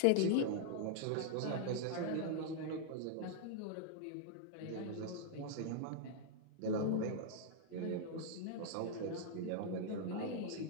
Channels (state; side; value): different; both; correlation -0.01